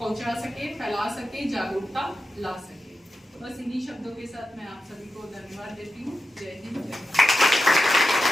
सके, फैला सके, जागरूकता ला सके। तो बस इन्हीं शब्दों के साथ मैं आप सभी को धन्यवाद देती हूँ। जय हिंद, जय भारत।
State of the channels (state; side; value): normal; both; correlation 0.90